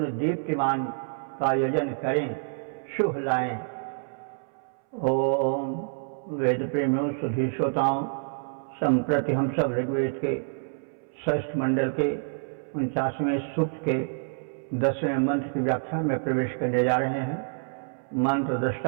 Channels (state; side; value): silent; left; 60 dB below the other